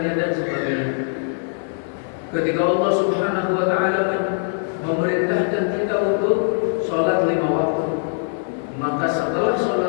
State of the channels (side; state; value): right; silent; digital silence